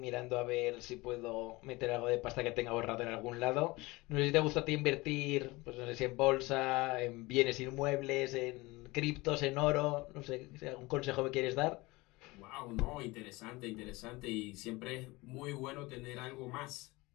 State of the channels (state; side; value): quieter; right; 22.3 dB